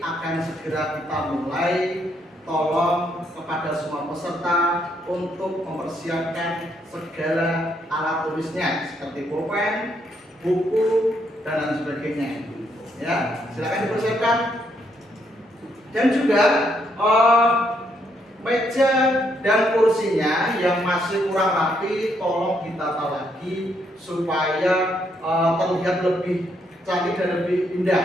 segera kita mulai. Tolong kepada semua peserta untuk mempersiapkan segala alat tulisnya seperti pulpen, buku, dan lain sebagainya. Ya, silakan dipersiapkan. Dan juga meja dan kursinya yang masih kurang rapi tolong ditata lagi supaya terlihat lebih cantik dan lebih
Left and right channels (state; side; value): normal; both; correlation 0.74